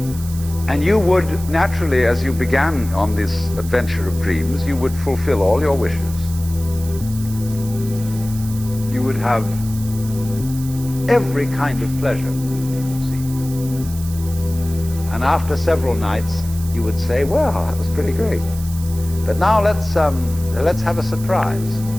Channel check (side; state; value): right; noise; hiss, 15 dB below the sound